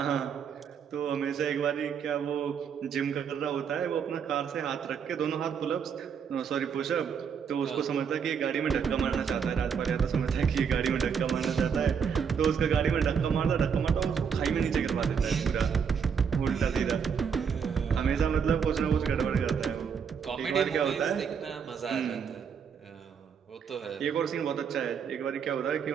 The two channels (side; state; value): left; quieter; 6.9 dB